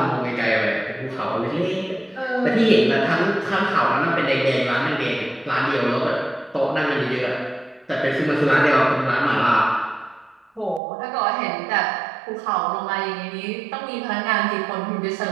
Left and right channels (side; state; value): left; drops out; at 10.8 s